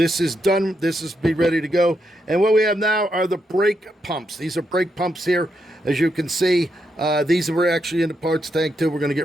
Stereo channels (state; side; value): normal; both; correlation 0.81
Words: is done. This is be ready to go. And what we have now are the brake pumps. These are brake pumps here. As you can see, these were actually in the parts tank too. We're going to